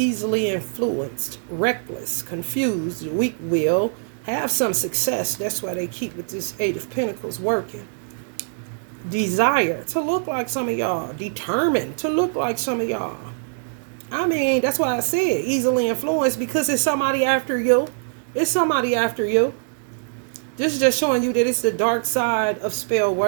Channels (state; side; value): silent; left; digital silence